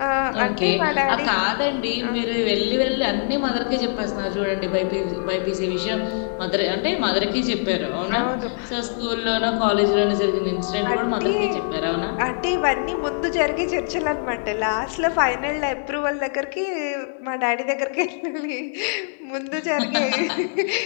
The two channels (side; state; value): right; silent; digital silence